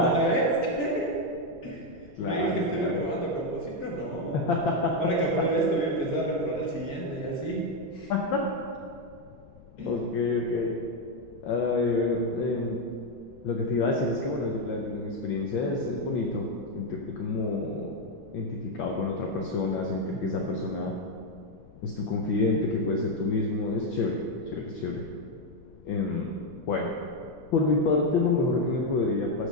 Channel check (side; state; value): left; noise; rumble, 21 dB below the sound